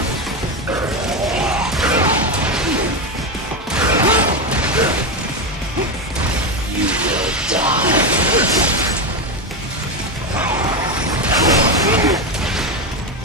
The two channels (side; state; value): both; normal; correlation 0.13